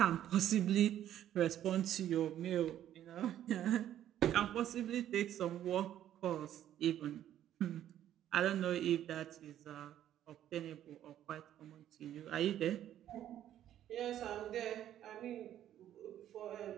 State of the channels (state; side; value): quieter; left; 11.5 dB